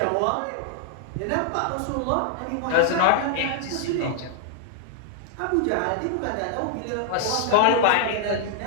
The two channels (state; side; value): different; both; correlation 0.00